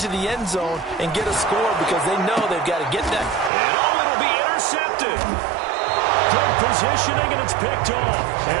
the end zone and get a score because they know they've got to get that. And it'll be intercepted. Good positioning, and it's picked off.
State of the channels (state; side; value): drops out; left; at 3.5 s